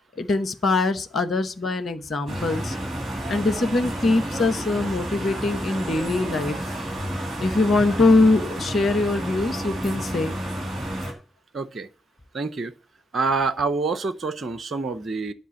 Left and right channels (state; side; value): normal; both; correlation 0.79